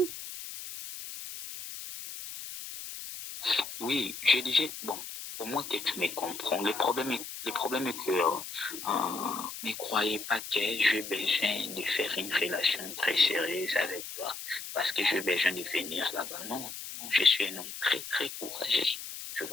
Oui, je disais, bon, au moins que tu me comprends. Le problème est que ne croyez pas que j'ai besoin de faire une relation très sérieuse avec toi parce que j'ai besoin de venir là-bas. Non, non, je suis un homme très, très courageux, tu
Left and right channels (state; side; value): noise; left; hiss, 10 dB below the sound